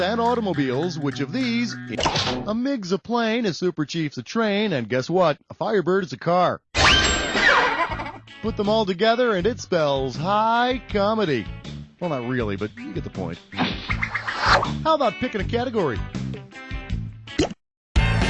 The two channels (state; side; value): identical; both; correlation 1.00